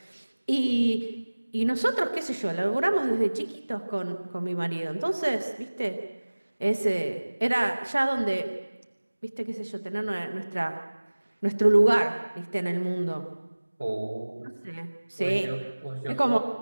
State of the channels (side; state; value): both; inverted; correlation -1.00